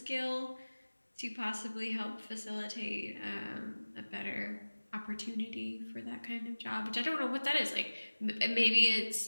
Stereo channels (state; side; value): inverted; both; correlation -1.00